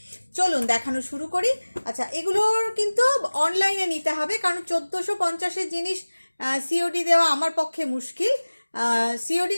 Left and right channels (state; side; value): inverted; both; correlation -1.00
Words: চলুন দেখানো শুরু করি। আচ্ছা, এগুলোর কিন্তু অনলাইনে নিতে হবে, কারণ 1450-এর জিনিস সিওডি দেওয়া আমার পক্ষে মুশকিল। সিওডি